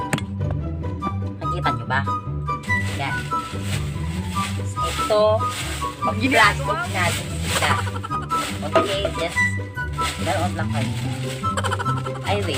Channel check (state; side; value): identical; both; correlation 1.00